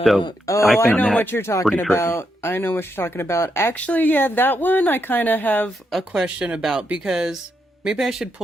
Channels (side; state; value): both; normal; correlation 0.81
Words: know what you're talking about. I know what you're talking about. Actually, yeah, that one I kind of have a question about, because maybe I should